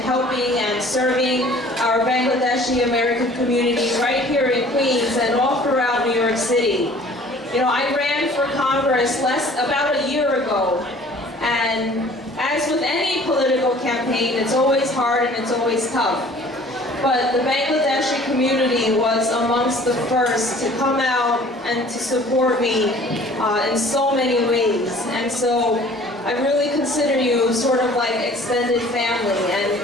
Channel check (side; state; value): both; normal; correlation 0.51